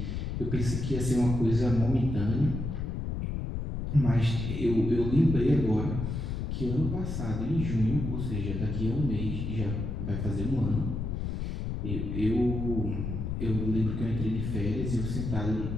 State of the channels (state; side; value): noise; left; rumble, 3 dB below the sound